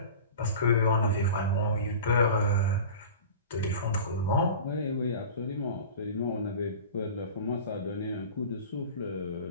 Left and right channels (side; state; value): both; inverted; correlation -0.36